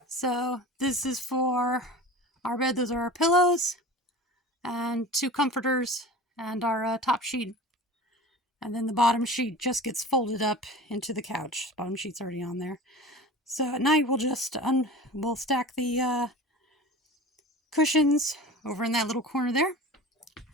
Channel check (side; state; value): both; normal; correlation 0.37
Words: So this is for our bed. Those are our pillows and 2 comforters and our top sheet. And then the bottom sheet just gets folded up into the couch. Bottom sheet's already on there. So at night we'll just we'll stack the cushions over in that little corner there.